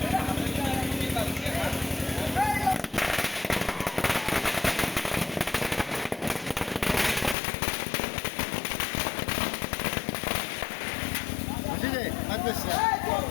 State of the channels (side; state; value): right; drops out; at 7.4 s